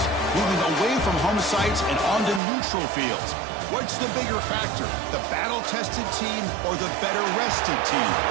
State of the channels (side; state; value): left; drops out; at 2.4 s